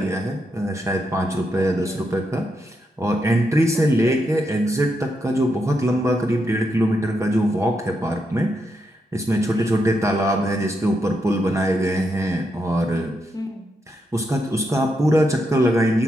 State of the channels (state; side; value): normal; both; correlation 0.82